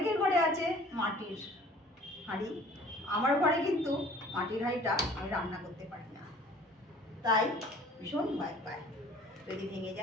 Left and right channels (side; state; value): both; normal; correlation 0.50